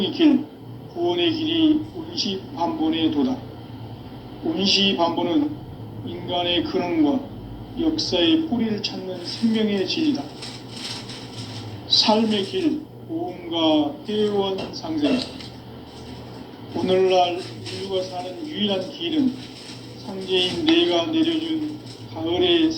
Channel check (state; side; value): identical; both; correlation 1.00